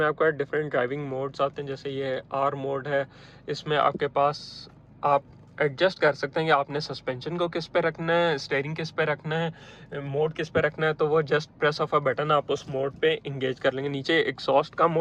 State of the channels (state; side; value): identical; both; correlation 1.00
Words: आपका डिफरेंट ड्राइविंग मोड्स आते हैं, जैसे ये आर मोड है। इसमें आपके पास आप एडजस्ट कर सकते हैं कि आपने सस्पेंशन को किस पे रखना है, स्टीयरिंग किस पे रखना है, मोड किस पे रखना है। तो वो just press of a button आप उस मोड पे इंगेज कर लेंगे। नीचे एग्जॉस्ट का